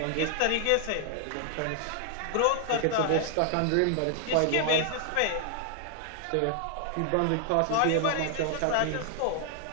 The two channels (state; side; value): different; both; correlation 0.00